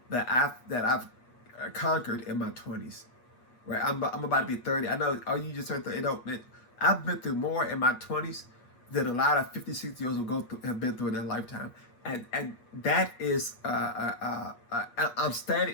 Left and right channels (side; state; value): right; late; 8.4 ms